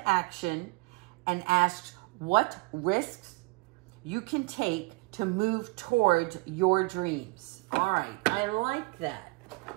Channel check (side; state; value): left; quieter; 26.9 dB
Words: action and ask what risks you can take to move towards your dreams. All right, I like that.